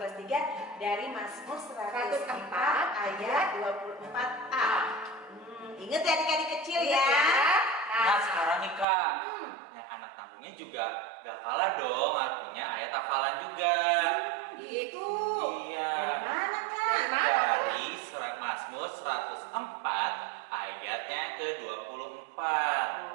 3 dari Mazmur 104 ayat 24a. Ingat ya adik-adik kecil ya. Nah sekarang nih Kak, yang anak tanggungnya juga gak kalah dong artinya ayat hafalan juga. Gitu. Iya. Dari mana Kak? Dari mana? Dari surat Mazmur 104 ayatnya ke-24.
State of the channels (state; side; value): drops out; left; at 8.8 s